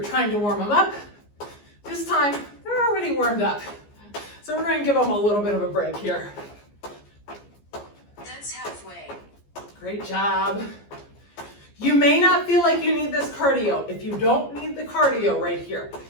trying to warm them up. This time, they're already warmed up. So we're going to give them a little bit of a break here. That's halfway. Great job. You may not feel like you need this cardio. If you don't need the cardio right here,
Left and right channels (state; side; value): late; right; 14 ms